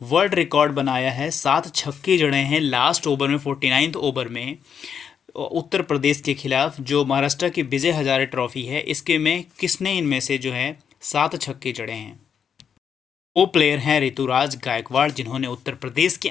वर्ल्ड रिकॉर्ड बनाया है? 7 छक्के जड़े हैं लास्ट ओवर में, 49th ओवर में उत्तर प्रदेश के खिलाफ जो महाराष्ट्र की विजय हजारे ट्रॉफी है इसके में किसने इनमें से जो है 7 छक्के जड़े हैं? वो प्लेयर हैं ऋतुराज गायकवाड़ जिन्होंने उत्तर प्रदेश के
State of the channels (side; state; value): right; quieter; 7.5 dB